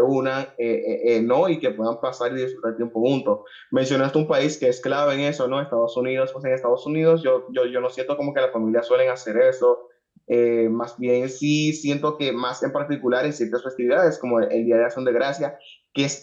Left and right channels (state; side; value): identical; both; correlation 1.00